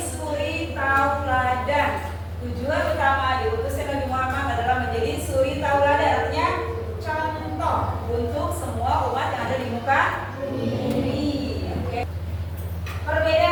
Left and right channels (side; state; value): both; identical; correlation 1.00